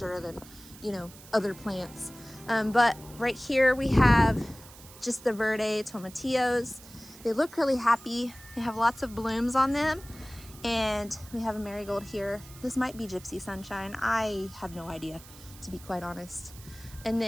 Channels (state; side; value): noise; right; hiss, 19 dB below the sound